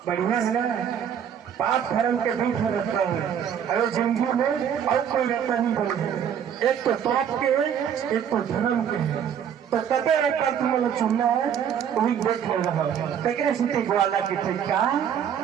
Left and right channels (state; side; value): quieter; left; 8.6 dB